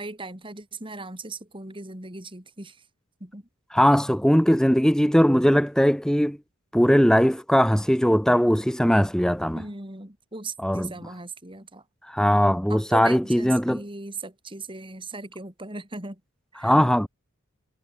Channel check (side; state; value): both; normal; correlation 0.98